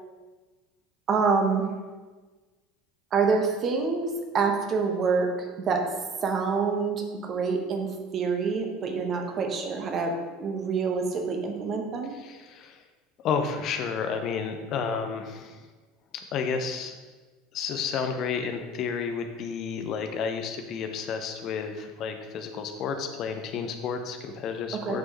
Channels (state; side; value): normal; both; correlation 0.46